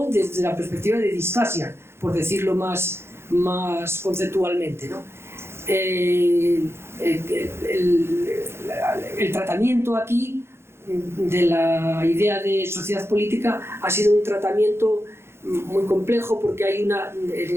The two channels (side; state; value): left; late; 0.12 ms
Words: desde la perspectiva de distasia, por decirlo más conceptualmente, ¿no? El tratamiento aquí de la idea de sociedad política ha sido un tratamiento muy complejo, porque en